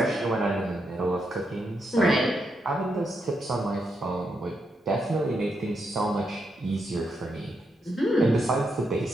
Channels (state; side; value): normal; both; correlation 0.81